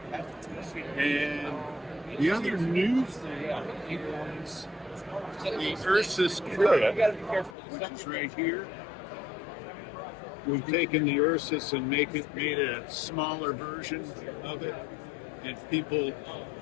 And the other new thing is the Ursus Kit, which is right here. We've taken the Ursus and made a smaller version of it, and people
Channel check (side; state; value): right; drops out; at 7.6 s